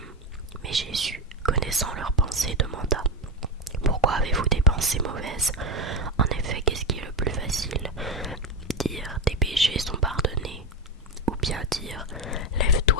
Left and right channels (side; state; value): both; normal; correlation 0.12